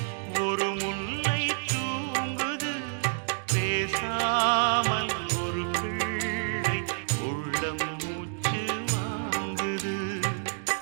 ஒரு முல்லை தூங்குது பேசாமல் ஒரு பிள்ளை உள்ளம் மூச்சு வாங்குது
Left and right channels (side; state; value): left; silent; 59 dB below the other